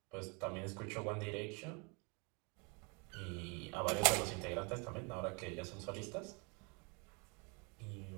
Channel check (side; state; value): left; quieter; 32.3 dB